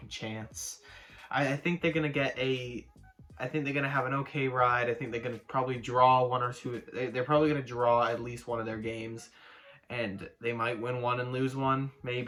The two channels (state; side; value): identical; both; correlation 1.00